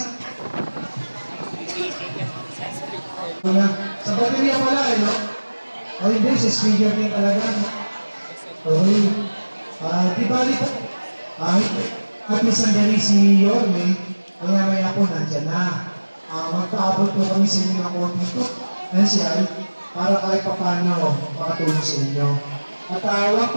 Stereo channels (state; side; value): inverted; both; correlation -1.00